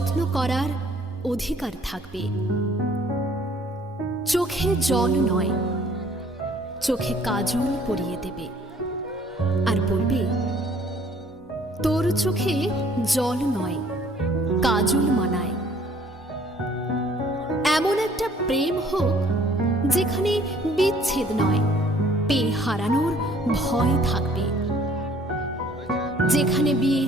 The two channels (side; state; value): both; normal; correlation 0.58